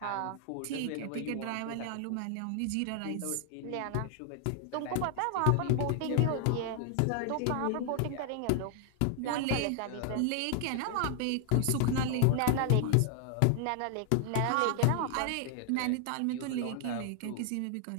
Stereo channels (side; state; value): both; different; correlation 0.00